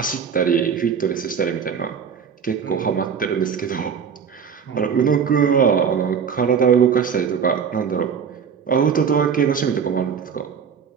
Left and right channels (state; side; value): quieter; left; 6.9 dB